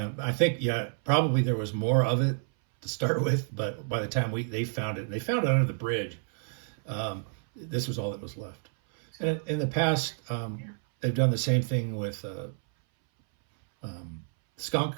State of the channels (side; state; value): left; silent; 58 dB below the other